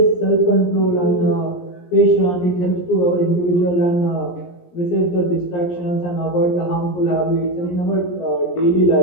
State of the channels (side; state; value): right; late; 17 ms